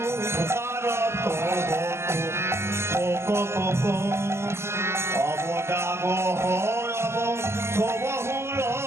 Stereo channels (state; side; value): late; left; 0.13 ms